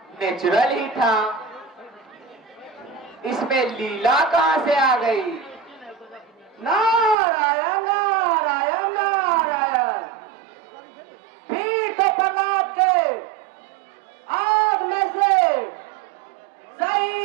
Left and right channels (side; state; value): left; drops out; at 7.2 s